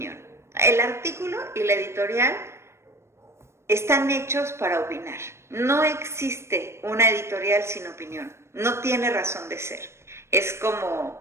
El artículo y la editorial están hechos para opinar. No existe una editorial sin opinión. No tiene razón de ser. Es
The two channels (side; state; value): left; late; 0.13 ms